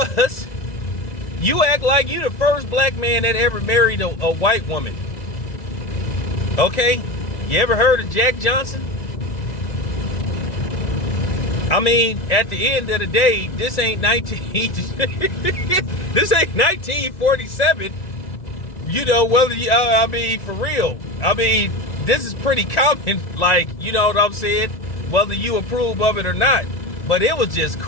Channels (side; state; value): right; late; 1.9 ms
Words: You act like you the first black man that ever married a white woman. Okay? You ever heard of Jack Johnson? I mean, at the end of the day, this ain't 1947. You know, whether you, I mean, for real. I mean, this is pretty common, like, you know what I'm saying? Whether you approve of it or not. But it was just